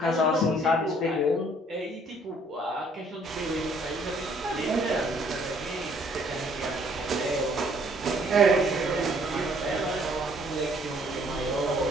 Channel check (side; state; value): both; normal; correlation 0.62